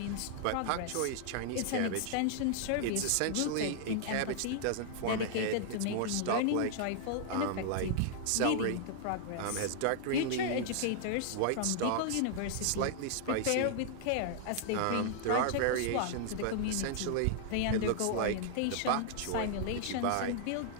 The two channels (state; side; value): different; both; correlation -0.01